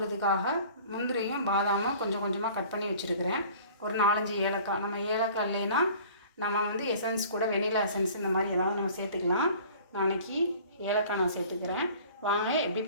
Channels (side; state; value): both; inverted; correlation -0.47